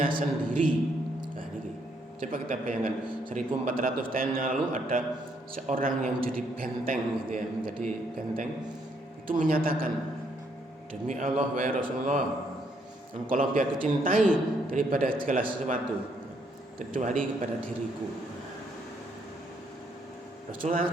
sendiri. Nah, ini coba kita bayangkan 1400 tahun yang lalu ada seorang yang menjadi benteng gitu ya, menjadi benteng itu menyatakan, demi Allah wahai Rasulullah, engkau lebih aku cintai daripada segala sesuatu kecuali kepada diriku. Rasulullah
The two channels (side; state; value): both; normal; correlation 0.72